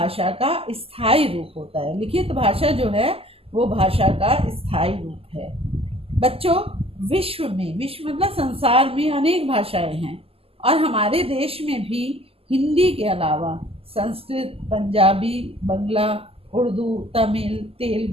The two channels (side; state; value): left; late; 0.28 ms